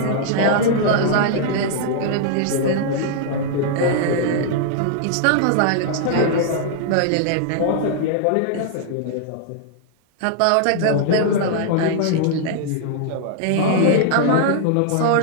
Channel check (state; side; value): different; both; correlation -0.01